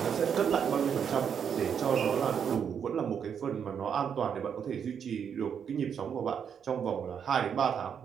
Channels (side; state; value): left; quieter; 7.6 dB